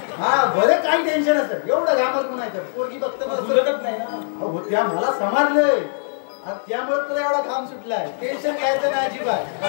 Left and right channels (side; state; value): right; silent; 65 dB below the other